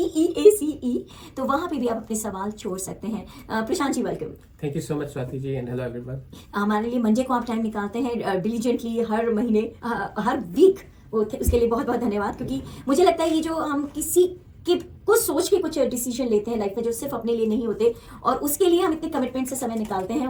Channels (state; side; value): identical; both; correlation 1.00